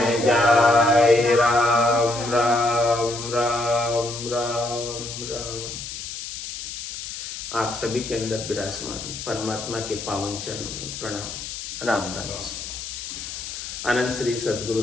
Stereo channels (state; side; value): noise; left; hiss, 8 dB below the sound